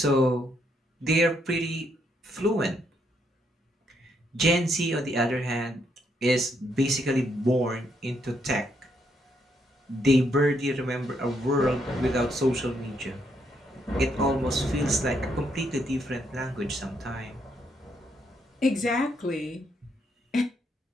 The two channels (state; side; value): normal; both; correlation 0.75